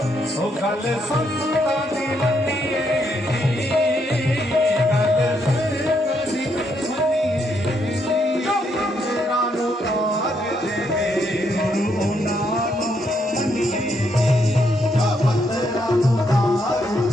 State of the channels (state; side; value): normal; both; correlation 0.76